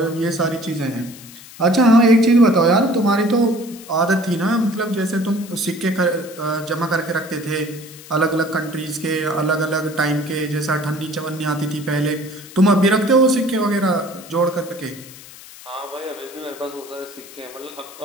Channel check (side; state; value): left; noise; hiss, 18 dB below the sound